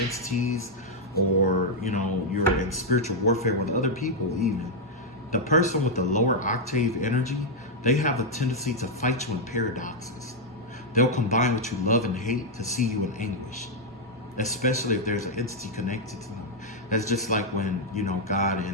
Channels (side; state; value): both; normal; correlation -0.02